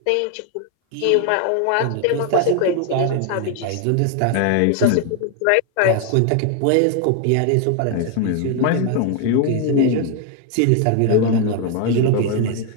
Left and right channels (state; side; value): different; both; correlation 0.01